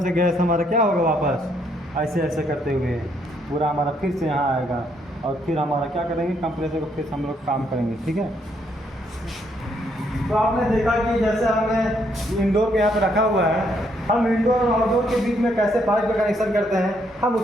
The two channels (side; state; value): both; normal; correlation 0.72